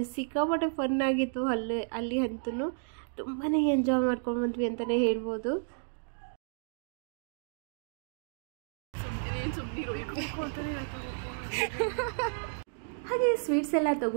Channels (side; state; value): left; silent; digital silence